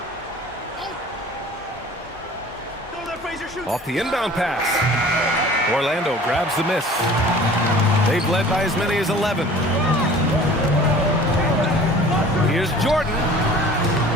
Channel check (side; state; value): both; normal; correlation 0.46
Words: Off the inbound pass. Orlando grabs the miss. They've led by as many as 11. Here's Jordan.